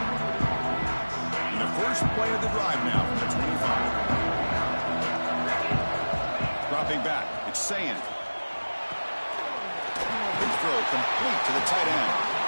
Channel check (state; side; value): inverted; both; correlation -1.00